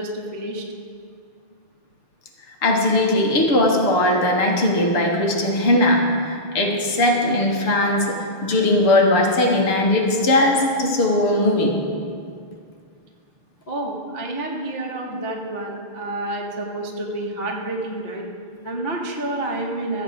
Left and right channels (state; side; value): late; right; 6.7 ms